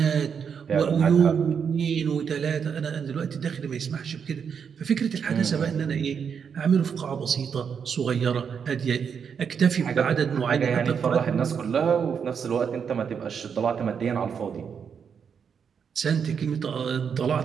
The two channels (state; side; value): quieter; left; 6.9 dB